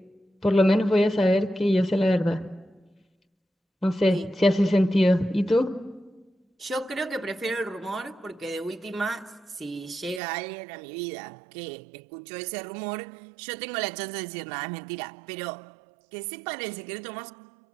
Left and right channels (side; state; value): left; drops out; at 10.2 s